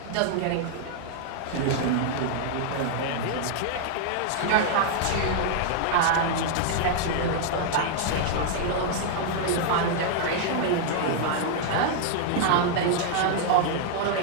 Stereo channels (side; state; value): both; different; correlation -0.01